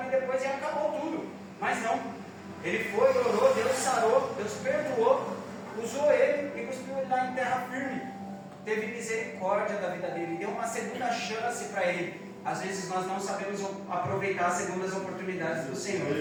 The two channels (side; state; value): both; identical; correlation 1.00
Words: depois e acabou tudo. Mas não, ele foi, orou, Deus sarou, Deus perdoou, usou ele e cuspiu ele lá em terra firme. Teve misericórdia da vida dele, deu uma segunda chance para ele. Às vezes nós não sabemos aproveitar as segundas oportunidades do